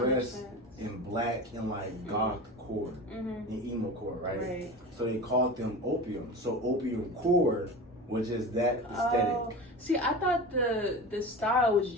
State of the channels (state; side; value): normal; both; correlation 0.31